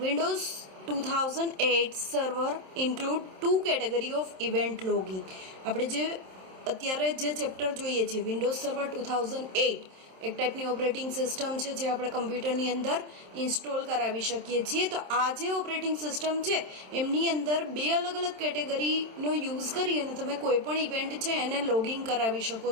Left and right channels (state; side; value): late; left; 27 ms